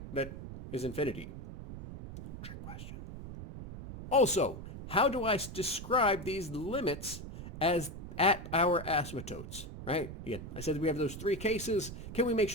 that is infinity? Trick question. Also, how do I describe these limits as at our asymptotes? Right? Again, I said that we have those three cases. Can we make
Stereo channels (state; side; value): noise; right; rumble, 9 dB below the sound